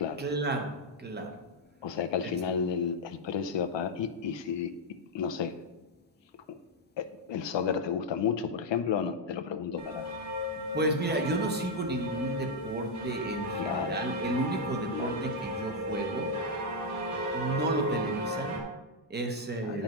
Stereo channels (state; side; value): normal; both; correlation -0.01